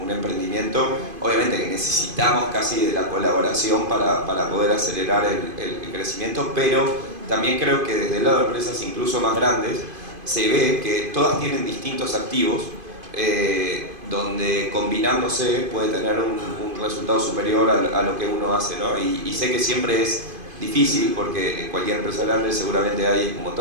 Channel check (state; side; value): late; left; 2.5 ms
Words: un emprendimiento, obviamente que necesitamos casi de la colaboración para poder acelerar el crecimiento, pero también creo que desde el lado de empresas incluso más grandes se ve que todas tienen distintos activos donde combinándose puede tener un resultado superior a lo que uno hace, ¿no? Y sé que siempre es difícil porque en cualquier empresa grande seguramente hay un